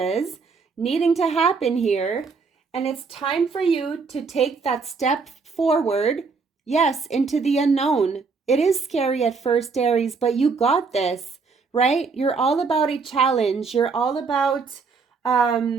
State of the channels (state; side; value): quieter; left; 4.8 dB